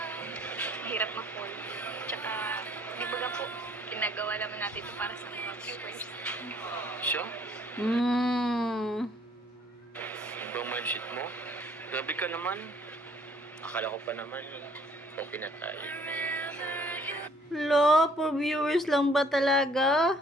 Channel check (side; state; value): both; normal; correlation 0.60